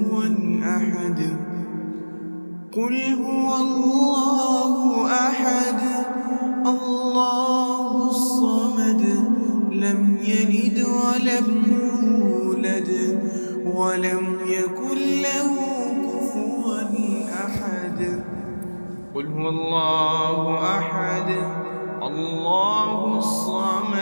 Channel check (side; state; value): both; inverted; correlation -1.00